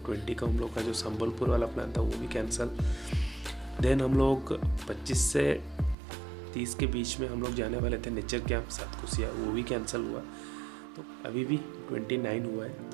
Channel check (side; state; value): left; drops out; at 6.0 s